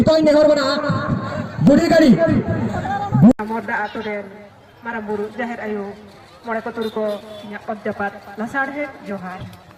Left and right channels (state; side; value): identical; both; correlation 1.00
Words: नेहर बना बुढ़ी गाड़ी मोदा आतोरे मारा बुरु जाहिर आयो मोड़े को तुर को अध्यापक लसाड़े जोहार